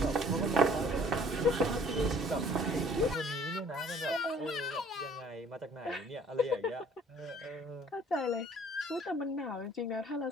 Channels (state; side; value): normal; both; correlation 0.56